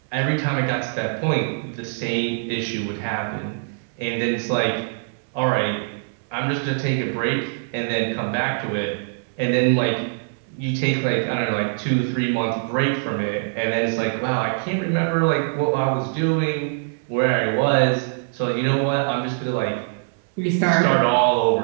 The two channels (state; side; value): silent; left; 63 dB below the other